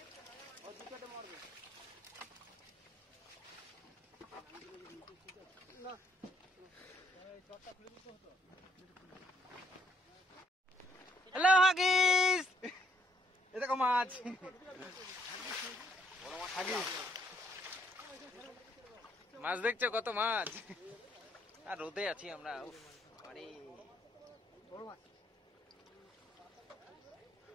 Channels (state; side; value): normal; both; correlation 0.70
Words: হ্যালো হাগিস, এ দেখো মাছ। মাছ দেখছো কত মাছ? আর রোদে আছি আমরা। আরে